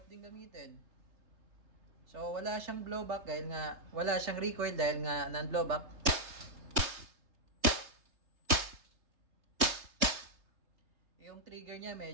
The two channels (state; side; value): late; left; 3.3 ms